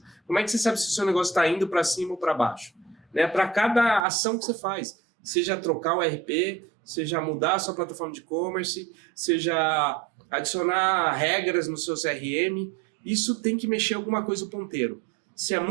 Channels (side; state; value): left; drops out; at 4.0 s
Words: Como é que você sabe se o seu negócio está indo para cima ou para baixo? Né? Para cada ação que você faz, seja trocar o RP, seja mudar a sua plataforma de e-commerce, seja adicionar regras no seu CRM, isso tem que mexer alguma coisa o ponteiro. Se é